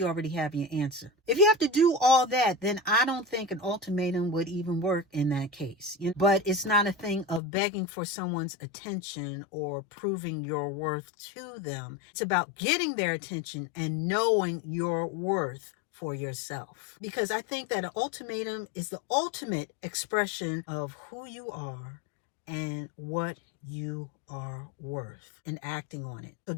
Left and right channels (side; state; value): right; drops out; at 7.4 s